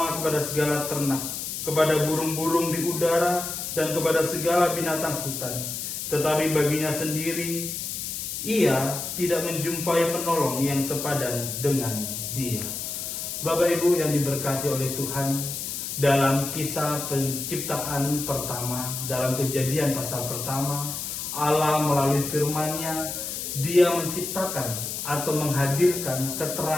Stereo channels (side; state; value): left; noise; hiss, 5 dB below the sound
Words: kepada segala ternak, kepada burung-burung di udara, dan kepada segala binatang hutan. Tetapi baginya sendiri, ia tidak menjumpai penolong yang sepadan dengan dia. Bapak Ibu yang diberkati oleh Tuhan, dalam kisah penciptaan pertama, dalam Kejadian pasal pertama, Allah melalui firman-Nya, Dia menciptakan atau menghadirkan